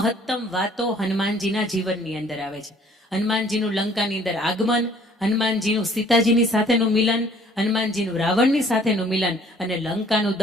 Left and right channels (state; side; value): normal; both; correlation 0.57